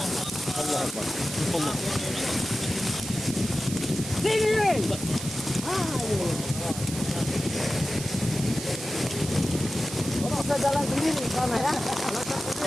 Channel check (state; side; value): noise; right; hiss, 9 dB below the sound